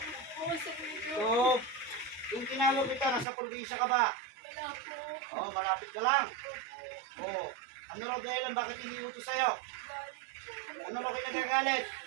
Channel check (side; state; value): left; drops out; at 3.2 s